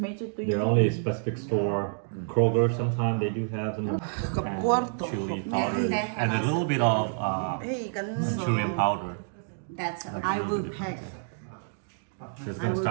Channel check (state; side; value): silent; left; digital silence